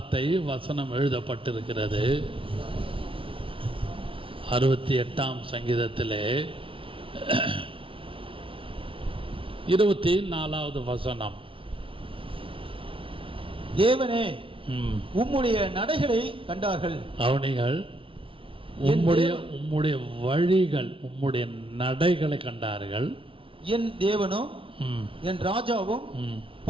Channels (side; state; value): left; late; 0.25 ms